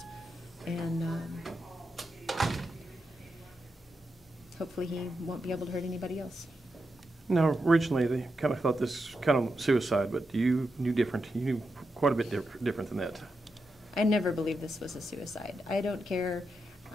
And hopefully he won't be able to hurt anybody else. Now, originally they kind of thought this kind of suicide, but you knew different. You knew quite a bit different than that. I never believed this was a suicide. I don't care.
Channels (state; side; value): normal; both; correlation 0.87